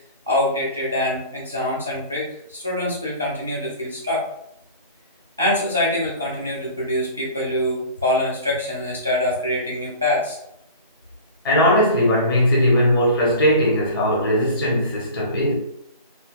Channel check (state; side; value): inverted; both; correlation -0.38